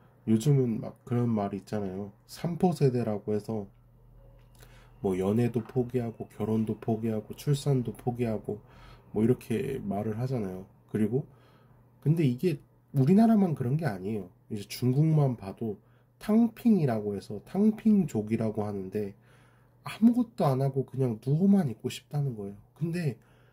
요즘은 막 그런 말이 있잖아요. 3포 세대라고 해서 뭐 연애도 포기하고 결혼도 포기하고 출산도 포기하고 뭐 이렇게 말을 하잖아요. 그리고 근데 이게 우리나라만 그런 게 아니에요. 이제 중국만 봐도 탕핑이라고 해서 탕핑족이라고 하는데, 아무것도 안 하고 그냥 누워만 있고 싶다는 거예요. 근데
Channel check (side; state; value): both; identical; correlation 1.00